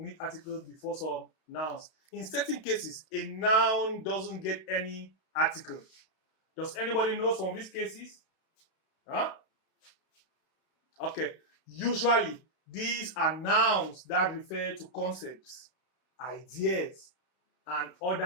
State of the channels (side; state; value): right; late; 32 ms